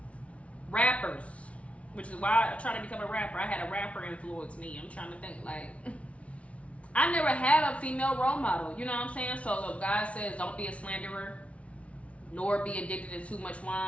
Rappers, which is why I tried to become a rapper. I had a rapper influence me. I'm trying to think, like, I never had a female role model, you know what I'm saying? So if God says don't be a slanderer, nor be addicted to too much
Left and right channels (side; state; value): right; late; 0.063 ms